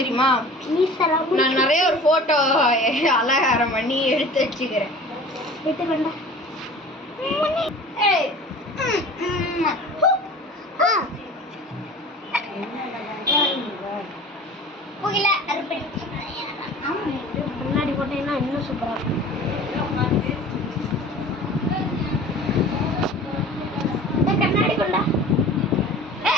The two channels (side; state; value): both; normal; correlation 0.42